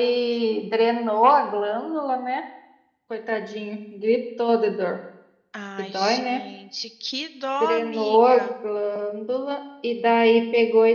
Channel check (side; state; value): both; identical; correlation 1.00